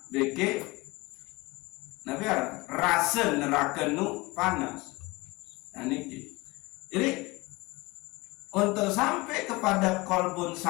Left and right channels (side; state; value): right; quieter; 23.2 dB